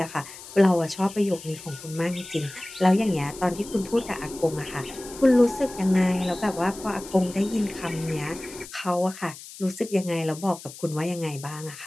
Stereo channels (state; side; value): noise; left; hiss, 15 dB below the sound